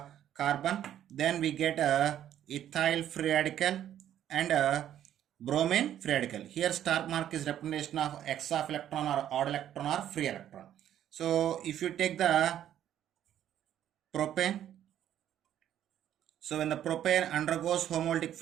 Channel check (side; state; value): left; quieter; 11.0 dB